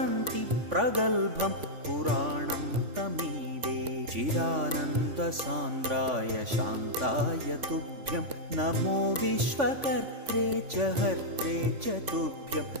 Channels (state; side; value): late; left; 3.5 ms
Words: प्रगल्भं पुराणं तमीडे चिदानन्दसान्द्राय शान्ताय तुभ्यं नमो विश्वकर्त्रे च हर्त्रे च तुभ्यं